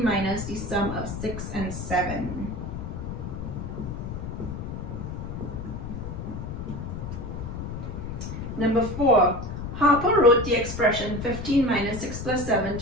minus the sum of 6 and 7. Number 4, Harper wrote the expression 15 minus 6 plus 7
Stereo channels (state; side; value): noise; left; rumble, 7 dB below the sound